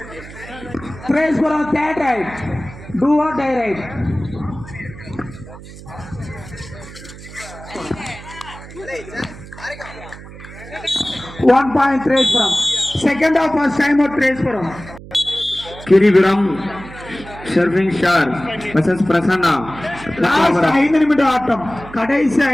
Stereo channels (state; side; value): noise; right; hum, 16 dB below the sound